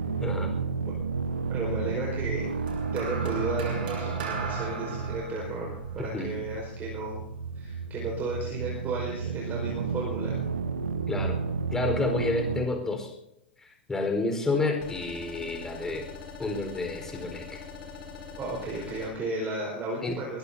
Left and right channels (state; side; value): normal; both; correlation -0.01